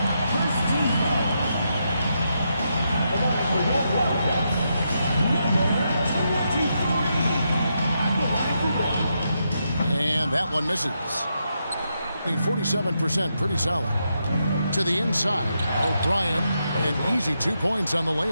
And that one misses. 47%, pretty solid. To the inside, O'Brien, an easy 2 points on the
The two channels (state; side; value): inverted; both; correlation -0.83